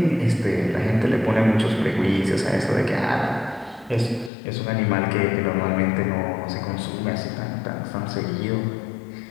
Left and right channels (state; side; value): drops out; right; at 4.3 s